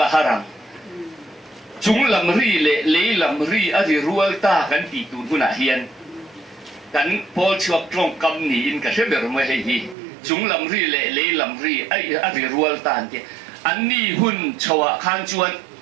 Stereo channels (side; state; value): left; drops out; at 10.0 s